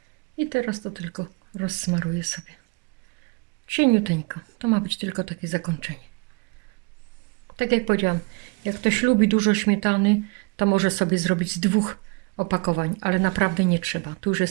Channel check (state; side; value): quieter; left; 30.0 dB